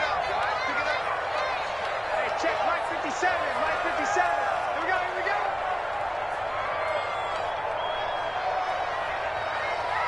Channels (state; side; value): identical; both; correlation 1.00